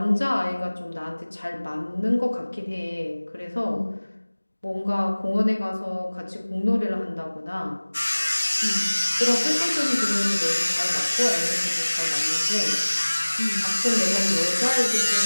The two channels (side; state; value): both; inverted; correlation -1.00